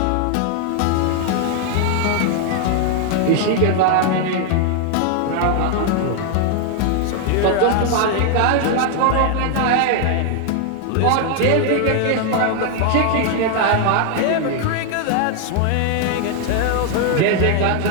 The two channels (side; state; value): both; different; correlation 0.00